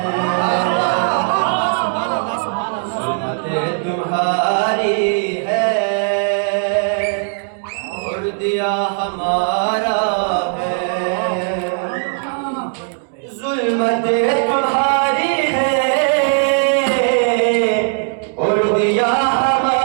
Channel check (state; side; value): silent; left; 67 dB below the other